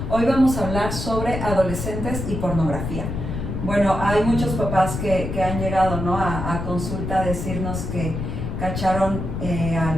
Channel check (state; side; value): noise; left; rumble, 4 dB below the sound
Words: Hoy vamos a hablar sobre adolescentes y pornografía. Bueno, hay muchos papás que han llegado, ¿no?, a consulta a decirnos que cacharon